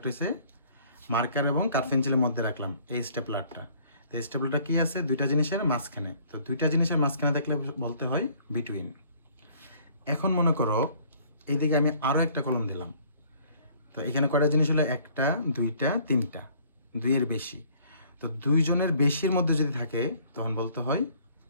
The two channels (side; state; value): both; inverted; correlation -0.58